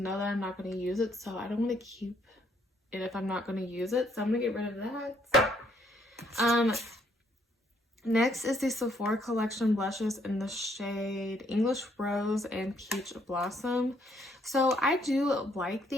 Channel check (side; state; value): both; normal; correlation 0.69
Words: that I'm not going to use it, so I don't want to keep it if I'm not going to use it. So I'm going to get rid of that. Next is the Sephora Collection blushes in the shade English Rose and Peach Blossom. So I do like